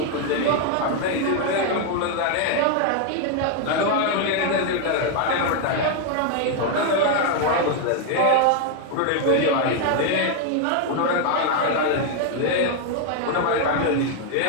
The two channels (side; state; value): both; different; correlation 0.00